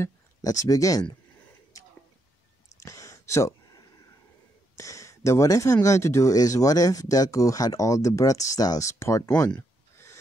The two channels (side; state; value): both; normal; correlation 0.78